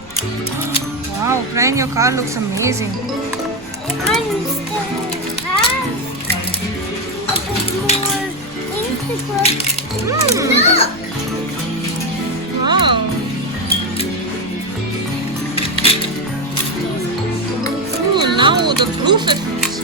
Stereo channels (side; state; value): right; noise; rumble, 22 dB below the sound